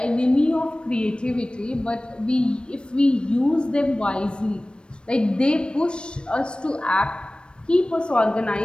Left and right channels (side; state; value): right; late; 0.055 ms